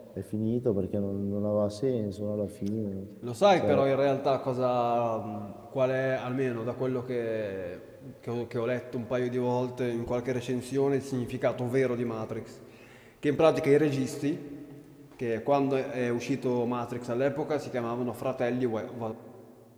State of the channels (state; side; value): identical; both; correlation 1.00